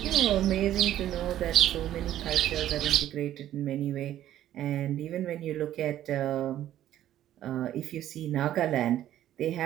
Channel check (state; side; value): quieter; left; 12.3 dB